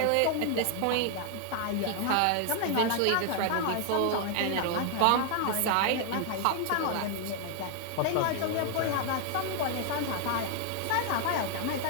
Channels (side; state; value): both; different; correlation 0.00